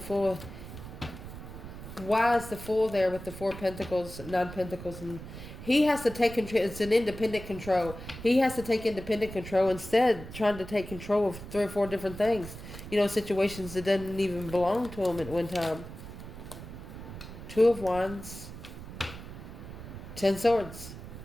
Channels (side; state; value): right; noise; rumble, 12 dB below the sound